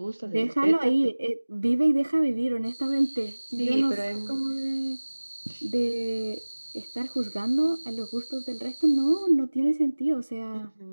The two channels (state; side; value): inverted; both; correlation -1.00